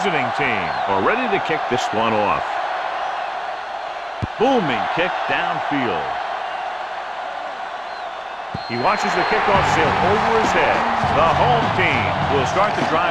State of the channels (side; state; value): both; identical; correlation 1.00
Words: team are ready to kick this one off. Booming kick downfield. He watches the kickoff sail over his head. The home team will start the